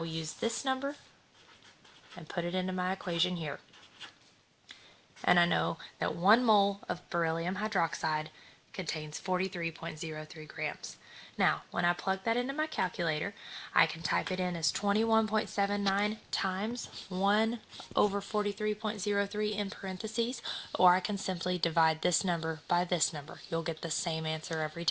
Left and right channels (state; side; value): identical; both; correlation 1.00